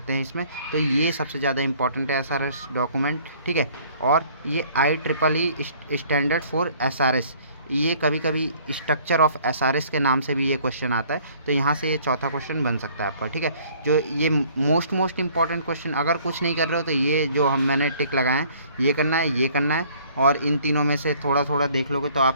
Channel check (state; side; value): inverted; both; correlation -0.57